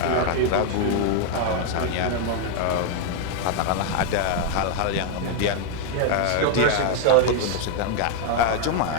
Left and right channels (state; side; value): different; both; correlation 0.00